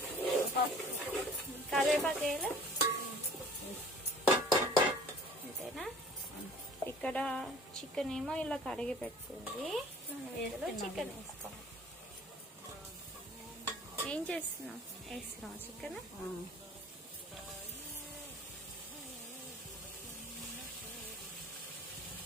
కరివేపాకు వేయాలి. అంతేనా? ఇక్కడ చికెన్ ఏమో ఇలా కడిగి పెట్టుకుంది. చికెన్ వేసుకోవాలి. ఏం చేస్తున్నావు? వేస్తున్నావు చికెన్.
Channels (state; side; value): normal; both; correlation 0.48